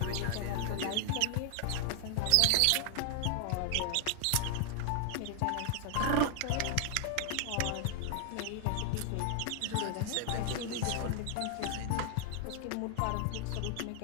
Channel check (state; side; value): different; both; correlation 0.00